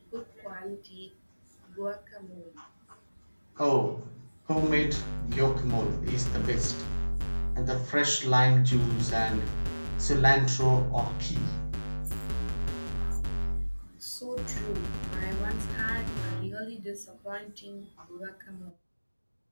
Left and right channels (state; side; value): inverted; both; correlation -1.00